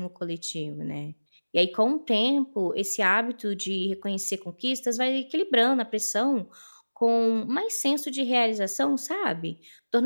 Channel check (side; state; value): both; inverted; correlation -1.00